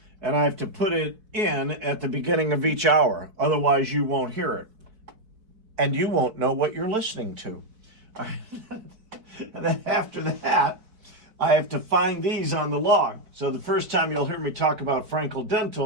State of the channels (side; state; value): left; late; 4.5 ms